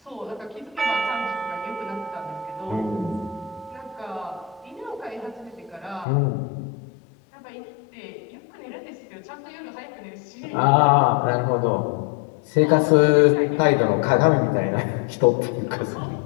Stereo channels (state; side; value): drops out; right; at 6.1 s